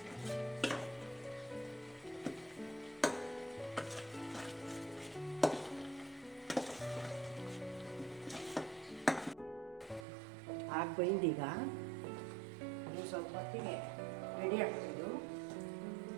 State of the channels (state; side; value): drops out; left; at 10.1 s